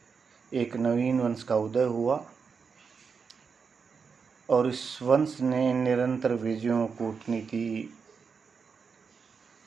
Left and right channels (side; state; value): left; quieter; 5.6 dB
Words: एक नवीन वंश का उदय हुआ और इस वंश ने निरंतर विजयों, कूटनीति